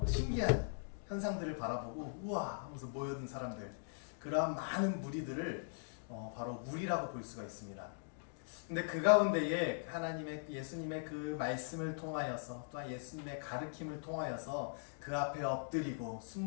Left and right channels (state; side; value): silent; right; digital silence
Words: 신기한 현상들을 바라보고 우와 하면서 모여든 사람들, 그러한 많은 무리들을 바로 무리라고 볼 수가 있습니다. 근데 그 가운데에 예수님의 그 말씀을 통하여서, 또한 예수님의 가르침을 통하여서 그 앞에 엎드리고